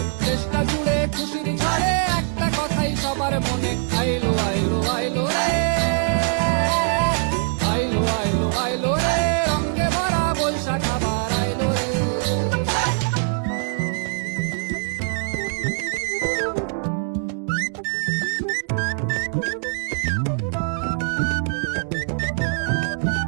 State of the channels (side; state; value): left; silent; 56 dB below the other